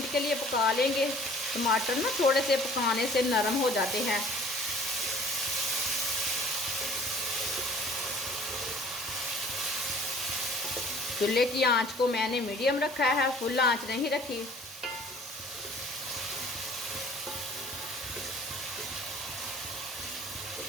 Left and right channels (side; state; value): both; normal; correlation 0.51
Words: के लिए पका लेंगे। टमाटर ना थोड़े से पकाने से नरम हो जाते हैं। चूल्हे की आंच को मैंने मीडियम रखा है, फुल आंच नहीं रखी।